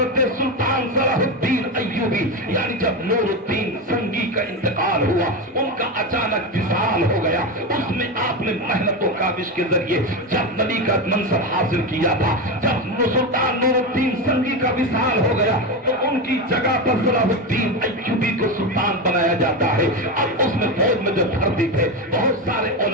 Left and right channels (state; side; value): normal; both; correlation 0.16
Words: سلطان صلاح الدین ایوبی یعنی جب نور الدین سنگی کا انتقال ہوا، ان کا اچانک وصال ہو گیا، اس میں آپ نے محنت و کاوش کے ذریعے جب نبی کا منصب حاصل کیا تھا، جب سلطان نور الدین سنگی کا وصال ہو گیا تو ان کی جگہ پر صلاح الدین ایوبی کو سلطان بنایا جاتا ہے۔ اب اس میں فوج میں جو بھرتی تھے بہت سارے